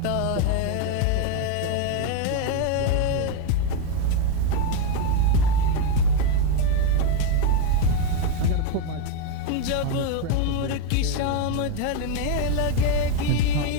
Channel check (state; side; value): different; both; correlation 0.01